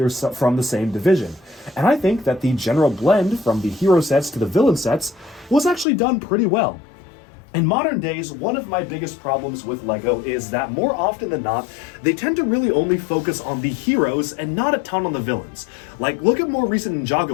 from the same division. And I think that the general blend from the hero sets to the villain sets was actually done pretty well. In modern days, one of my biggest problems with LEGO is that more often than not, they tend to really only focus on the heroes and not a ton on the villains. Like, look at more recent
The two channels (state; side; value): drops out; right; at 5.9 s